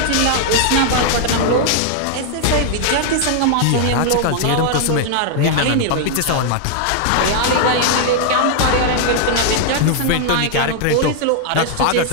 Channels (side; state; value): both; different; correlation 0.00